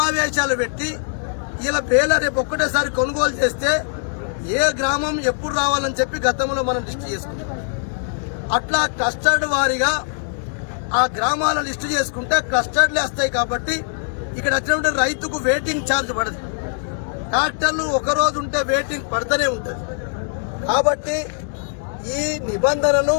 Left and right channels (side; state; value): right; silent; digital silence